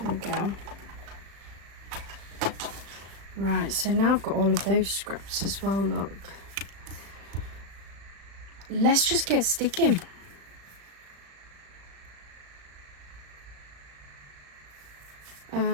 we go. Right, so now I've got all of those scraps as well, look. Let's just get sticking.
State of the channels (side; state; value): left; late; 36 ms